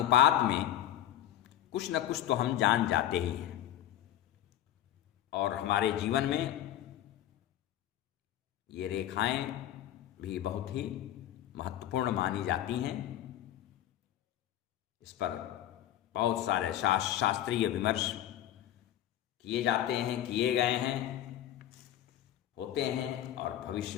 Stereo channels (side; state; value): right; quieter; 12.1 dB